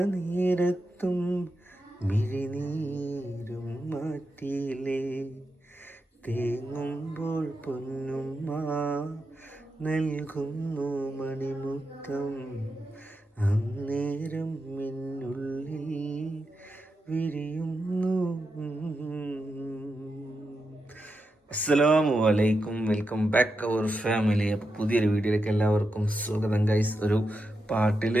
നേരത്തും മിഴിനീരും മാറ്റിയില്ലേ. തേങ്ങുമ്പോൾ പൊന്നുമ്മ നൽകുന്നു മണിമുത്തം, അന്നേരം മിന്നുള്ളിൽ വിരിയുന്നു. അസ്സലാമു അലൈക്കും, വെൽക്കം ബാക്ക് അവർ ഫാമിലി. അപ്പോൾ പുതിയൊരു വീഡിയോയിലേക്ക് എല്ലാവർക്കും സ്വാഗതം ഗൈസ്. ഒരു പാട്ടിൽ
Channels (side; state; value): both; normal; correlation 0.87